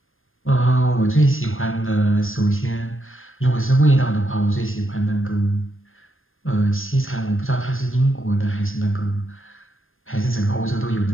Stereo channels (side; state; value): right; late; 0.59 ms